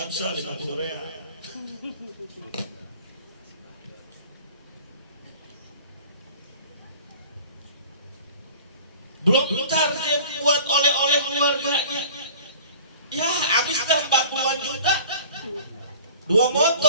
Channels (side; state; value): both; inverted; correlation -0.45